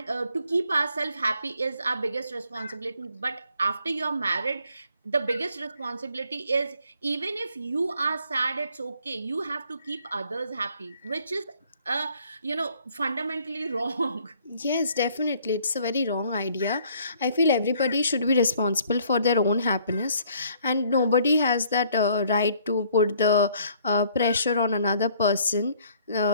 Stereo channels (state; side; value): inverted; both; correlation -0.62